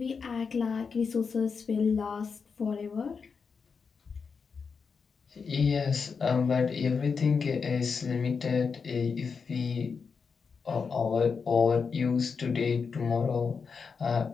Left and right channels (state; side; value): quieter; right; 5.5 dB